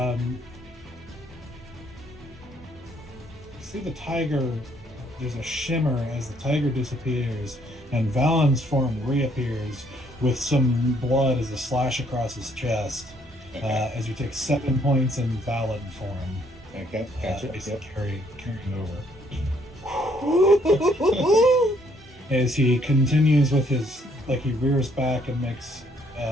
see the tiger. There's a shimmer as the tiger disappears, and Valen's form reappears with some blood as a slash across his chest. Okay. As you take 7 points in Valen form. Okay, gotcha. Carrying over. As he continues with his, like he rears back and makes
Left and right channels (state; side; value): normal; both; correlation 0.67